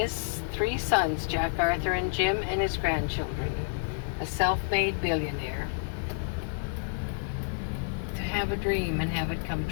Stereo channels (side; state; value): right; silent; digital silence